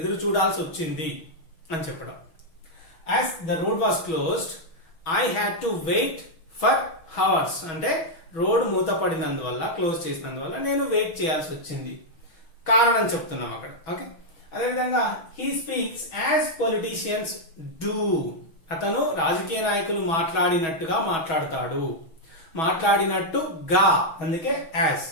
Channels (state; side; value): late; right; 6.2 ms